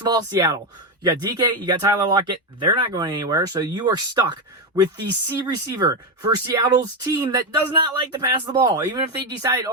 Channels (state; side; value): normal; both; correlation 0.10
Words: of all, Seattle. You got DK, you got Tyler Lockett. They're not going anywhere, so you are stuck with the C receiver for Seattle's team that does not like to pass the ball. Even if they decide,